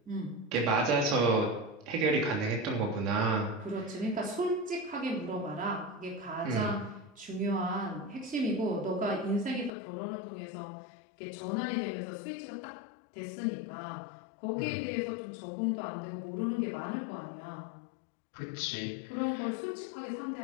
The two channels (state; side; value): drops out; right; at 9.7 s